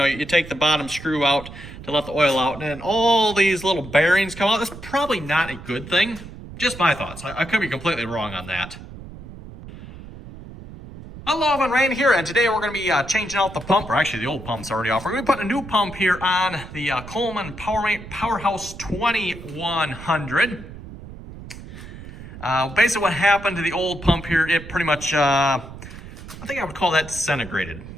take the bottom screw out to let the oil out, and then all these little bearings come out. That's probably not a good thing. Just my thoughts. I could be completely wrong on that. Hello, everyone, Rain here, and today we're going to be changing out the pump, or actually the old pump's already off. We're going to be putting a new pump here on the Colemn Powerhouse 2100. Basically what happened to the old pump here, it pretty much, I think I would call that disintegrated.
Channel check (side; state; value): right; noise; rumble, 14 dB below the sound